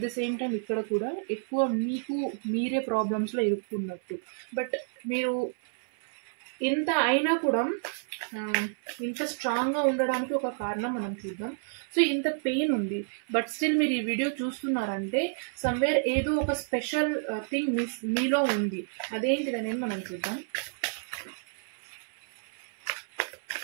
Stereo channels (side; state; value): left; silent; 57 dB below the other